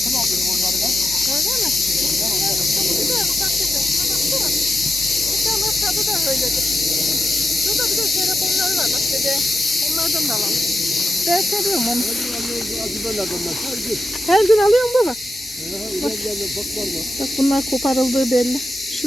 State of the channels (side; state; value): both; normal; correlation 0.88